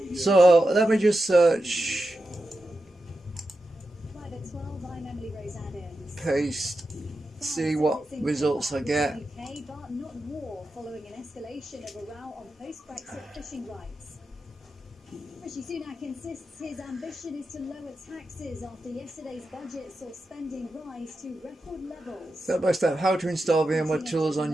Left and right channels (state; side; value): normal; both; correlation 0.90